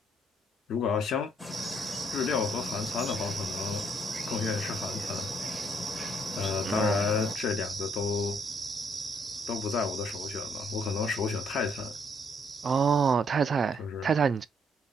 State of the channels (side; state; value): both; normal; correlation 0.69